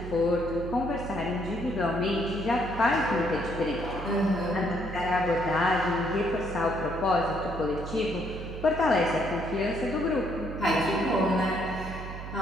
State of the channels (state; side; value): noise; right; hum, 9 dB below the sound